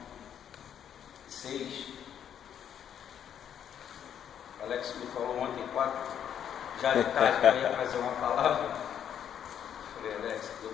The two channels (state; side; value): quieter; right; 9.2 dB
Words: 6. Alex me falou ontem, 4, já de tarde, que eu ia fazer uma palavra. Falei, Alex, não deu